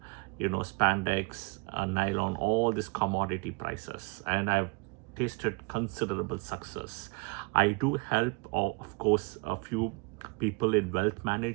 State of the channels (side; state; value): left; quieter; 29.5 dB